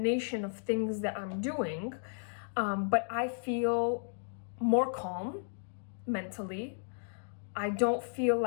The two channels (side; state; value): right; silent; digital silence